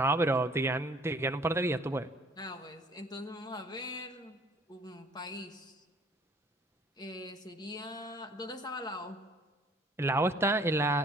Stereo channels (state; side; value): normal; both; correlation 0.56